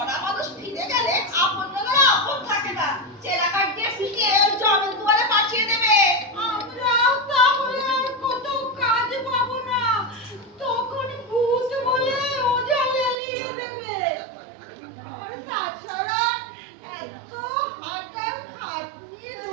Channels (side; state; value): left; drops out; at 13.2 s